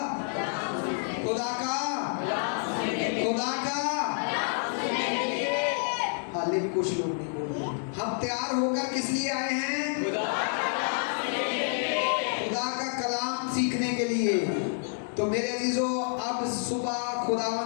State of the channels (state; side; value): silent; right; 59 dB below the other